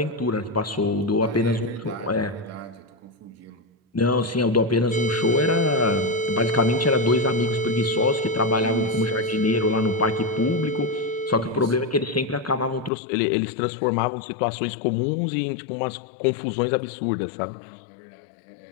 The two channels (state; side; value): drops out; right; at 12.9 s